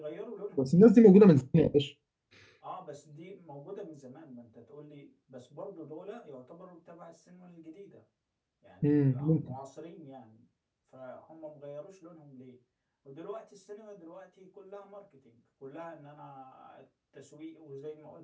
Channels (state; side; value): identical; both; correlation 1.00